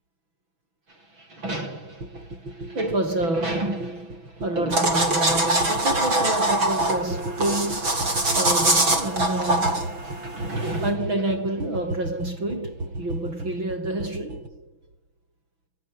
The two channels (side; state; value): left; late; 6.1 ms